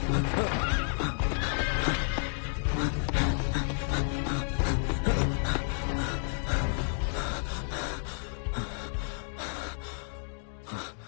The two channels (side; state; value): right; silent; 57 dB below the other